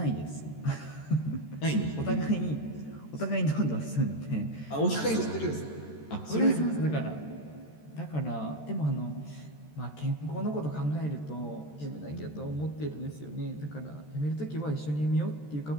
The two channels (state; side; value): late; right; 13 ms